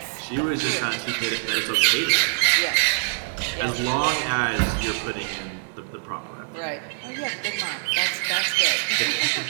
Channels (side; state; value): left; silent; 62 dB below the other